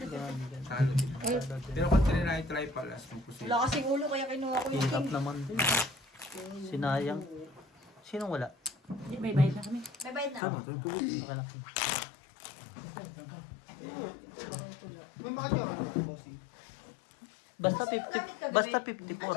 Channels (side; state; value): right; drops out; at 10.4 s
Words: Talo din. Pero kung try palas ng puso. Wala kasing ulo kaya kinuha ko yung Hirap naman din. Sinayang. Sinong wala? May bayad na kami. May bayad na. Tama, tama. Akala ko. May mga dyan. Bossy. Basta 50. Basta